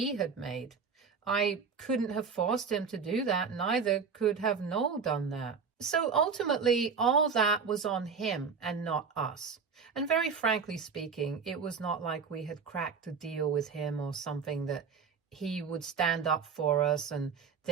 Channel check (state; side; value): quieter; left; 5.8 dB